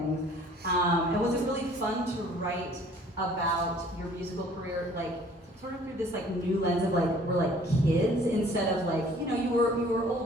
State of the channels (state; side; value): normal; both; correlation 0.54